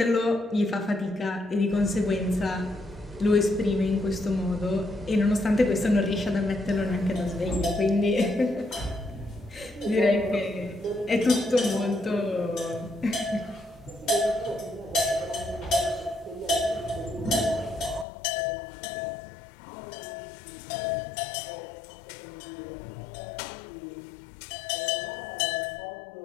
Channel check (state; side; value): drops out; right; at 18.1 s